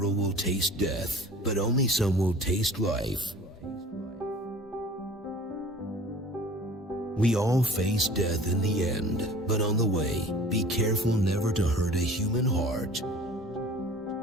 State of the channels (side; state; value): both; normal; correlation 0.45